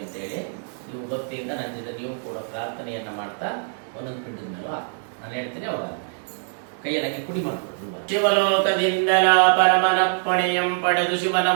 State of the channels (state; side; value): silent; left; digital silence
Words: ಅಂತೇಳಿ ನೀವು ಭಕ್ತಿಯಿಂದ ನನ್ನಿಂದ ನೀವು ಕೂಡ ಪ್ರಾರ್ಥನೆಯನ್ನ ಮಾಡ್ತಾ ಒಂದೊಂದು ಪಿಂಡದ ಮೇಲೂ ನಾನು ಹೇಳ್ತೇನೆ. ಅವಾಗ ಕೈಯಲ್ಲಿ ಕುಡಿ ಮಾಡ್ಕೊಡ್ರು. ಶಿವಲೋಕದಿಂದಲ ಪರಮನಪ್ಪಣೆಯಂ ಪಡೆದು ಶಿವನ